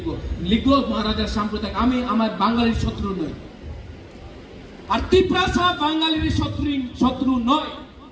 লিখবো মহারাজার সাম্প্রদায়িক। আমি আমার বাঙালির শত্রু নই, আর তিপ্রাসা বাঙালির শত্রু নয়।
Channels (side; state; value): both; identical; correlation 1.00